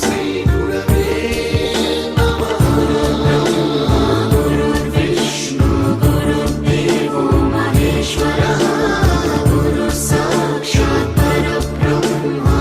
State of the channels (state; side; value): identical; both; correlation 1.00